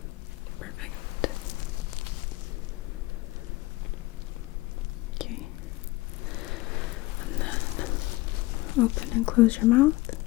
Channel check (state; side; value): quieter; right; 20.3 dB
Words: perfect. Okay. And then open and close your mouth.